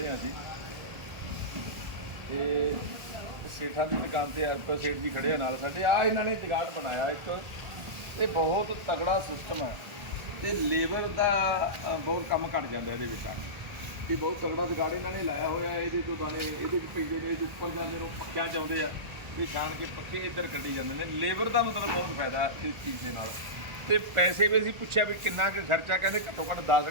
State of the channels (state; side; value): late; left; 1.4 ms